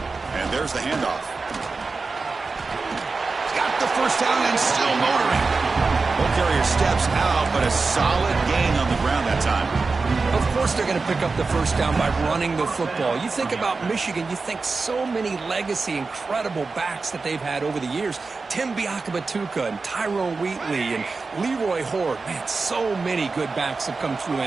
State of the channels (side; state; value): left; quieter; 4.1 dB